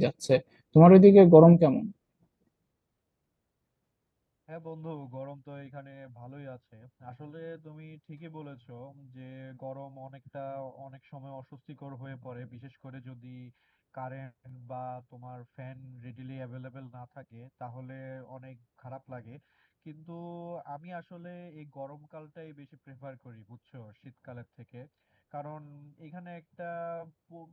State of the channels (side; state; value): both; identical; correlation 1.00